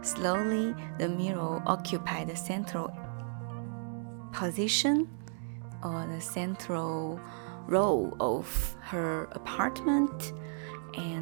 Slowly, the mirror occupied the central position or the central role of her apartment,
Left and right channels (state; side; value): silent; left; 55 dB below the other